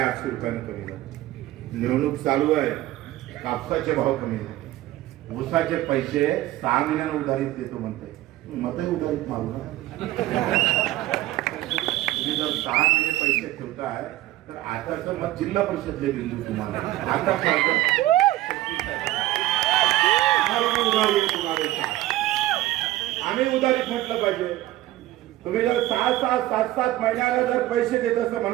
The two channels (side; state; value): left; quieter; 15.9 dB